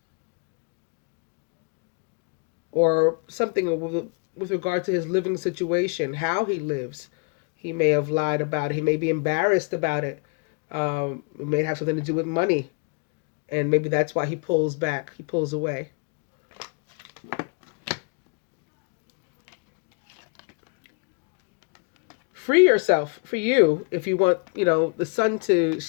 Or something with regard to his living situation, how he lives. He may have lied about it. He may be embarrassed about it. It may have something to do with money. And maybe that's why he pulls back. He pulls away. Free yourself. For you, if you want, the sun to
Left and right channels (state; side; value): quieter; right; 37.0 dB